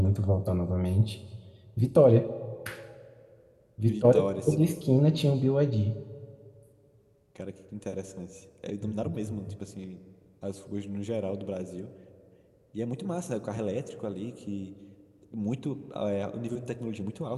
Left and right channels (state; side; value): identical; both; correlation 1.00